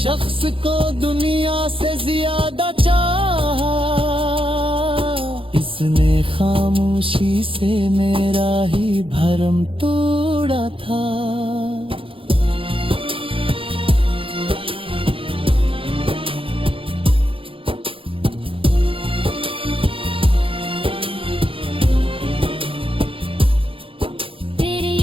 को दुनिया से ज्यादा चाहा, इसने खामोशी से मेरा ही भरम तोड़ा था। तेरी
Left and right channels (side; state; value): left; late; 0.26 ms